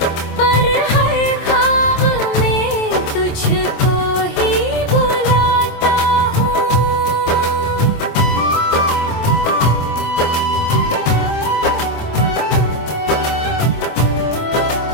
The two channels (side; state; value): right; late; 25 ms